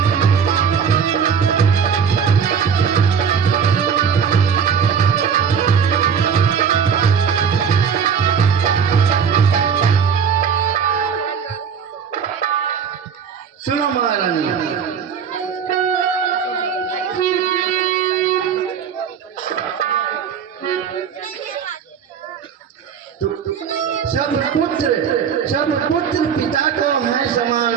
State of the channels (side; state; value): left; quieter; 7.1 dB